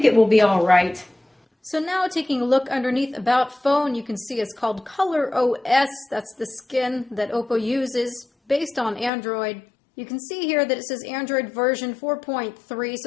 it will be all right. So now taking a look underneath About Phone, you can see it's called Color OS. That's the skin that Oppo uses based on Android. You can see here that it says Android version 4.3,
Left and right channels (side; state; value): right; drops out; at 9.1 s